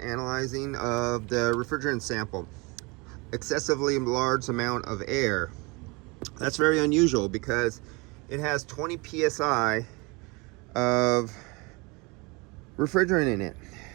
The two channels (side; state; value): left; quieter; 27.5 dB